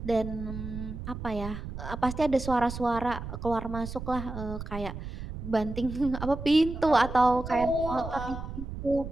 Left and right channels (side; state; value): right; noise; rumble, 8 dB below the sound